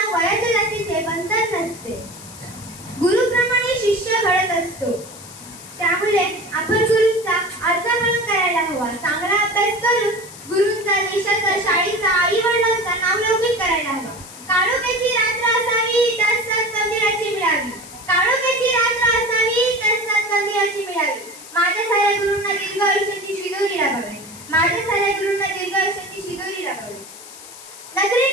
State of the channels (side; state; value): left; noise; hiss, 16 dB below the sound